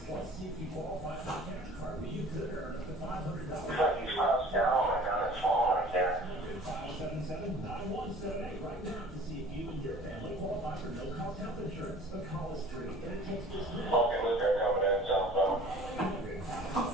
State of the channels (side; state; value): left; noise; hum, 25 dB below the sound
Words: Plus, see if you qualify for a cash card where you could earn up to $500. These clouds down, oh my god, it's falling right there. 577-9178 right now to see if you and your family qualify for no-cost health insurance. The call is free, and it takes just minutes. Fucking look at coming in southbound.